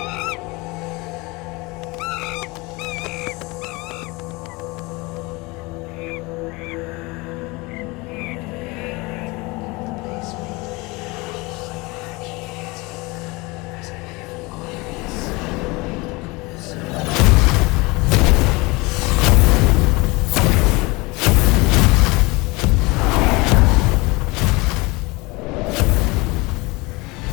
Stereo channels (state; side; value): quieter; right; 24.6 dB